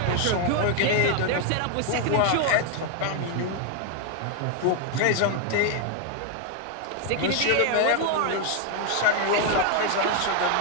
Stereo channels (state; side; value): different; both; correlation 0.01